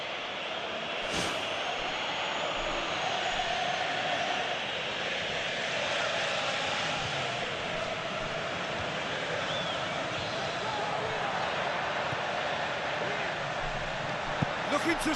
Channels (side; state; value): both; identical; correlation 1.00